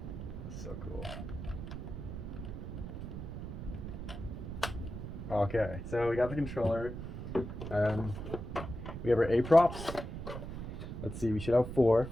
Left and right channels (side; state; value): right; noise; rumble, 7 dB below the sound